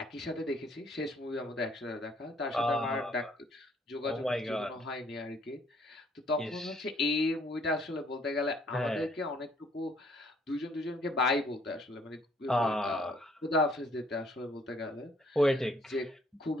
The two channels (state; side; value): normal; both; correlation 0.64